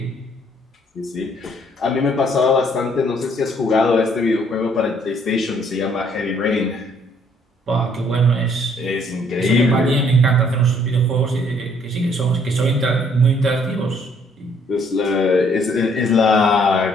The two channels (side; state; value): both; normal; correlation 0.64